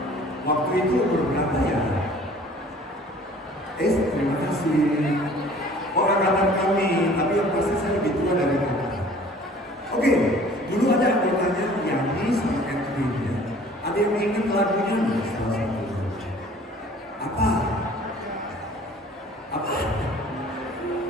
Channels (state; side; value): normal; both; correlation 0.50